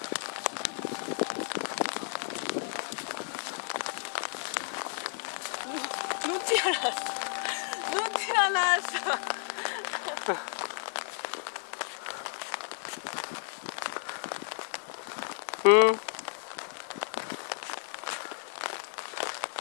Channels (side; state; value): right; silent; 56 dB below the other